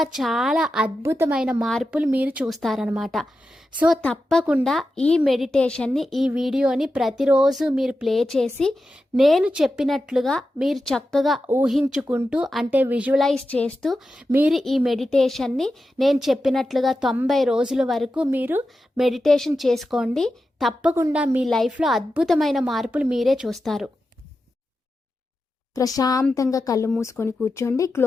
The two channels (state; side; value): normal; both; correlation 0.91